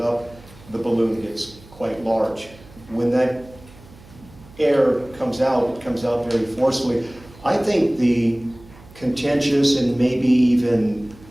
up, the balloon gets quite large. When that air comes out, it comes out very forcefully. I think the contentious and maybe even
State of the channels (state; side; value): noise; right; hum, 23 dB below the sound